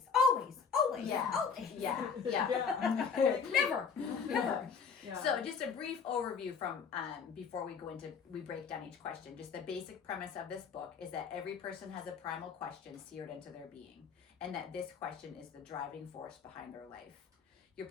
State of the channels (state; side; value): quieter; right; 6.1 dB